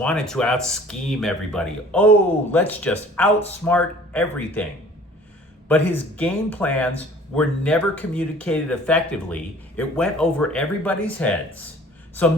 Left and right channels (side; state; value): both; normal; correlation 0.50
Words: to out-scheme everybody. Oh, let's just outsmart everything. But his game plans were never communicated effectively. It went over everybody's heads. So